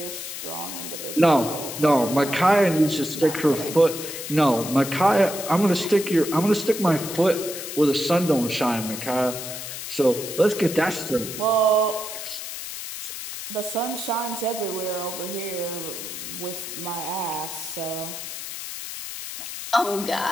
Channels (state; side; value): noise; left; hiss, 8 dB below the sound